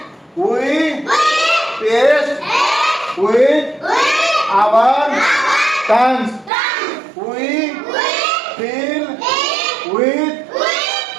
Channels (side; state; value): left; drops out; at 6.5 s